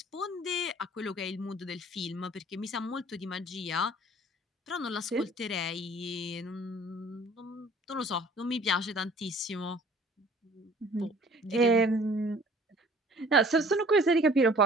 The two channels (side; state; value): both; normal; correlation 0.52